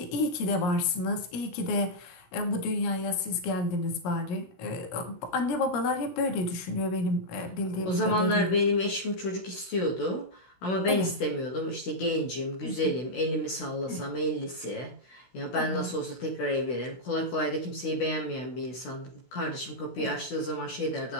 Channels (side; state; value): right; late; 16 ms